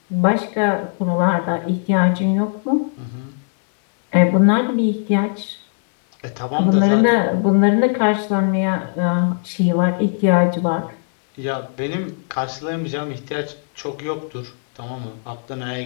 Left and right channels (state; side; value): silent; right; 60 dB below the other